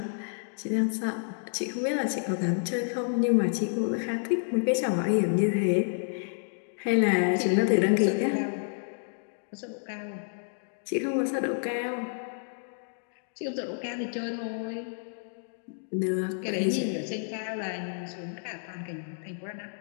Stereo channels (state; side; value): silent; right; digital silence